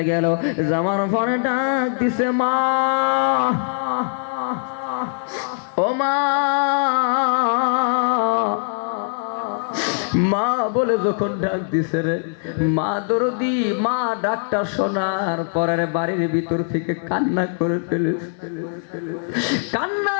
গেল যাওয়ার পরে ডাক দিছে মা ও মা বলে যখন ডাক দিছে রে মা দরদি মা ডাকটা শোনার পরে বাড়ির ভিতর থেকে কান্না করে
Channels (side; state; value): right; silent; 62 dB below the other